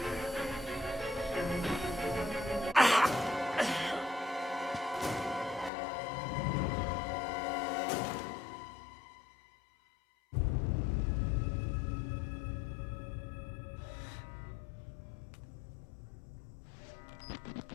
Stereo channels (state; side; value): drops out; right; at 5.7 s